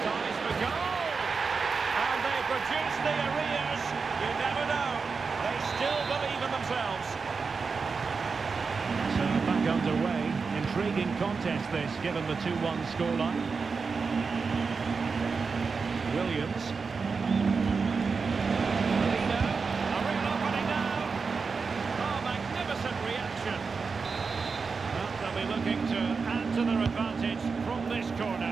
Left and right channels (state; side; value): quieter; left; 4.9 dB